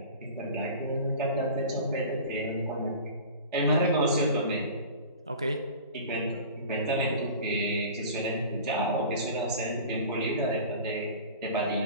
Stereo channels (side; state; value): both; inverted; correlation -0.38